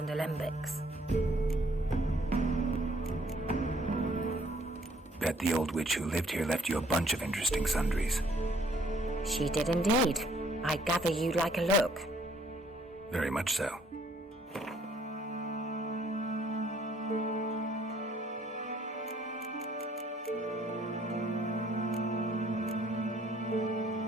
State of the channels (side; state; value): both; normal; correlation 0.63